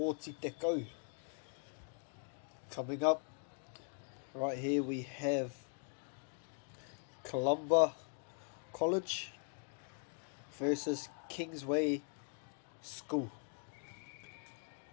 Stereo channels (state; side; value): silent; right; 50 dB below the other